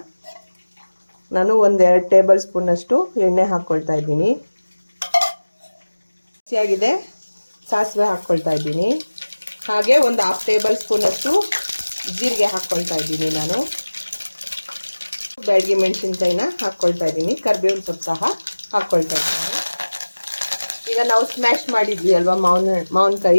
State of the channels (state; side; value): inverted; both; correlation -1.00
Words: ನಾನು 1-2 ಟೇಬಲ್ ಸ್ಪೂನಷ್ಟು ಎಣ್ಣೆ ಹಾಕ್ಕೊಳ್ತಾ ಇದ್ದೀನಿ. ಹಸಿಯಾಗಿದೆ ಸಾಸಿವೆ ಹಾಕ್ಕೊಳ್ತಾ ಇದ್ದೀನಿ. ಹಾಗೆ ಒಂದು 1/2 ಟೇಬಲ್ ಸ್ಪೂನಷ್ಟು ಜೀರಿಗೆ ಹಾಕ್ಕೊಳ್ತಾ ಇದ್ದೀನಿ. ನಾನು ಬ್ಯಾಡಗಿ ಮೆಣಸಿನ್ಕಾಯಿನ ಹಾಕ್ಕೊಳ್ತಾ ಇದ್ದೀನಿ. ಕರಿಬೇವಿನ ಸೊಪ್ಪು ಸಹ ಹಾಕ್ಕೊಳ್ತಾ ಇದ್ದೀನಿ. ಈಗ ನಾವು ಸ್ಮ್ಯಾಶ್ ಮಾಡಿದ್ವಿ ಅಲ್ವಾ